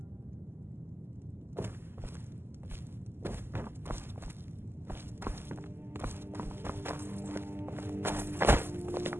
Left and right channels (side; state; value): left; late; 0.11 ms